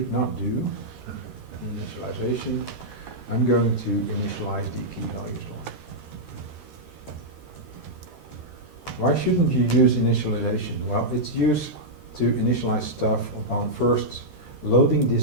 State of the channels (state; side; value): late; left; 13 ms